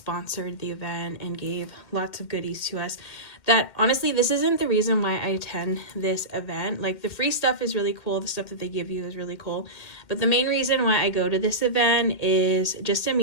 the event and gave lots of goodies to us. That honestly, this isn't the reason why I attend this event. Like, the free stuff is really cool. The stuff that they give you is really cool. But the main reason why I go to this event is just to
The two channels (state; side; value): late; right; 2.1 ms